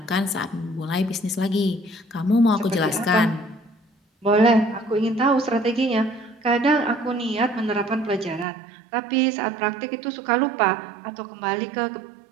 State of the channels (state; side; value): drops out; left; at 8.5 s